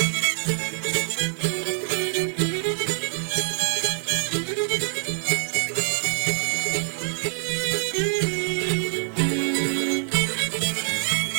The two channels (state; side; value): silent; left; 62 dB below the other